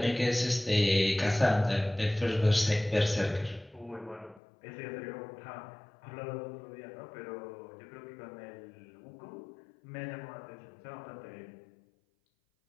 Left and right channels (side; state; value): right; drops out; at 4.4 s